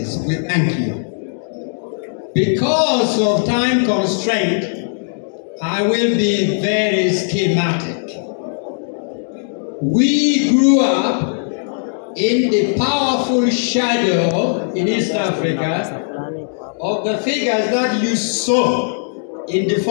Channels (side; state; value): right; silent; digital silence